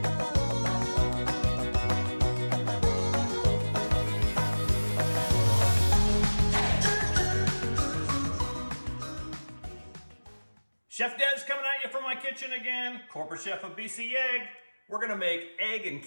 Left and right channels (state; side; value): inverted; both; correlation -1.00